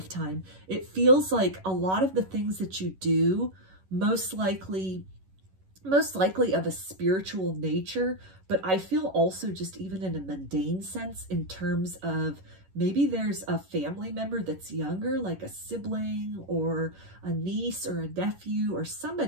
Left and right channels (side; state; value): left; late; 11 ms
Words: it feels like a lot of the things that you do, most likely of a spiritual nature, but I feel also just even in a mundane sense, in terms of maybe there's a family member that's younger, like a sibling or a niece or a nephew or